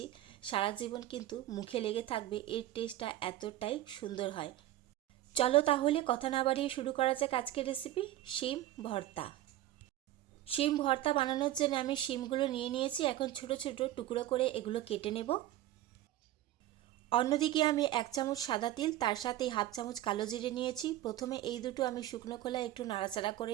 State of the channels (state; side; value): quieter; left; 14.2 dB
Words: সারা জীবন কিন্তু মুখে লেগে থাকবে, এর টেস্টটা এতটাই সুন্দর হয়। চলো তাহলে কথা না বাড়িয়ে শুরু করা যাক আজকের রেসিপি, শিম ভর্তা। শিম ভর্তা বানানোর জন্য আমি শিমগুলো নিয়ে নিয়েছি। এখন ছোট ছোট টুকরো করে এগুলো কেটে নেব। অন্যদিকে আমি 1 চামচ সাদা তিল, তার সাথে হাফ চামচ কালো জিরে নিয়েছি। প্রথমে এই দুটো আমি শুকনো খোলায় একটু নাড়াচাড়া